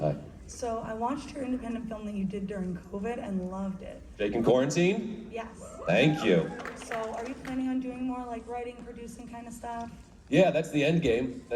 So I watched your independent film that you did during COVID and loved it. NJcon Quarantine? Yes. Thank you. So are you planning on doing more like writing, producing kind of stuff? Yeah, that's the end game.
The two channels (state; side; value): identical; both; correlation 1.00